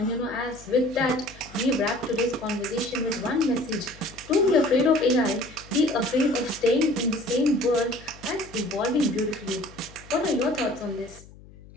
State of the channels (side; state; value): left; noise; hum, 21 dB below the sound